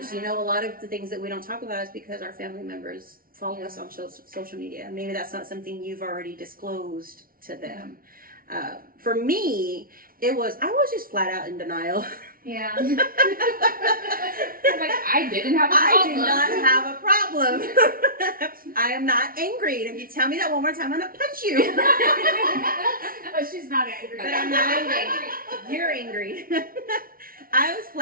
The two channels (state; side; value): late; left; 0.42 ms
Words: You know, a lot of the things that we don't talk about is because our family members follow us on social media. Maybe that's not something you've already disclosed to them. For me, I was just flat out in denial. Yeah. I'm like, I didn't have a I problem. do not have a problem. I am not angry. And if you tell me that one more time, I'm going to punch you. But she's not angry. But I'm not angry. You're angry. I was